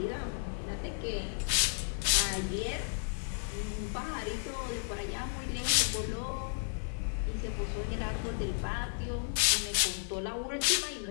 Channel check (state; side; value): silent; right; digital silence